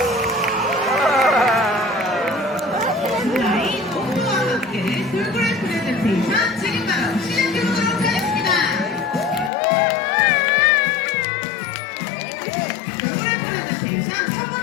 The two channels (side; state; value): right; drops out; at 9.5 s